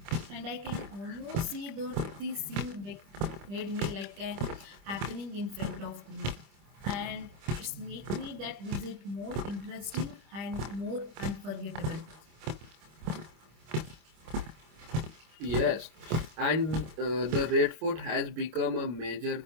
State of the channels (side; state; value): left; late; 25 ms